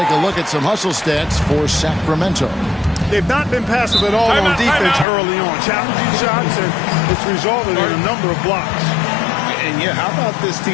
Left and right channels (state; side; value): drops out; right; at 5.1 s